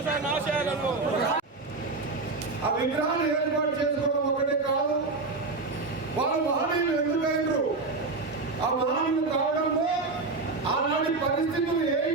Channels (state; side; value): quieter; left; 3.7 dB